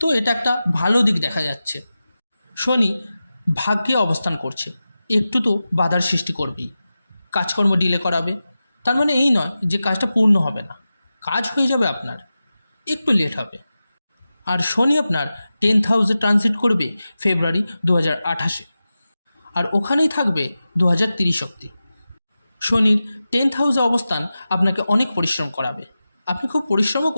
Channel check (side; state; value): both; inverted; correlation -0.94